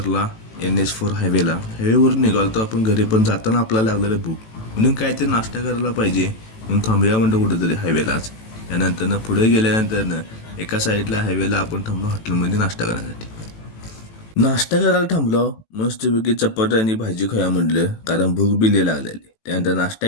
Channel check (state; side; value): late; right; 18 ms